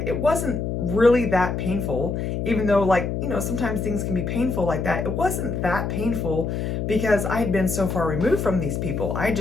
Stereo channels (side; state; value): left; noise; hum, 2 dB below the sound